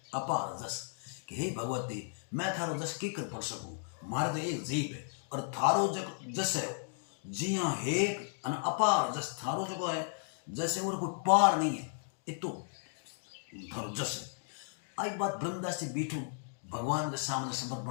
अपार जस कि हे भगवती मैं थारो जस की कर पढ़ सकूं, मारे तो एक जीव है और थारो जस है। जी हाँ हे अन अपार जस थारो जो है जैसे और कोई पार नहीं है, इतो थारो जस है। आई बात ब्रह्मदास जी बीठू भगवान के सामने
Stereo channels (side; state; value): right; silent; digital silence